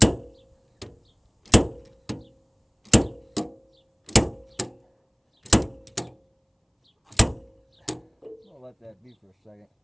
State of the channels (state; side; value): identical; both; correlation 1.00